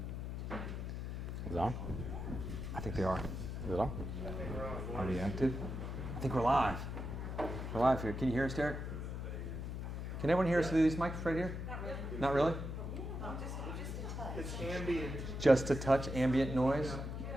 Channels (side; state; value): left; noise; hum, 5 dB below the sound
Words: on? I think they are. Is it on? Are we active? I think we're live. We're live here. Can you hear us, Derek? Can everyone hear us through these mics right here? Not really? It's ambient. Just a touch ambient noise.